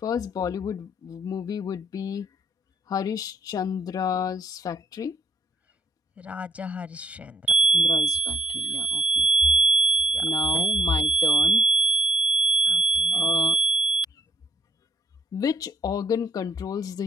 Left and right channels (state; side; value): normal; both; correlation 0.64